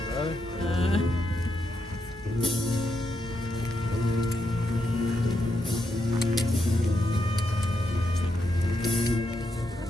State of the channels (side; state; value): both; normal; correlation 0.82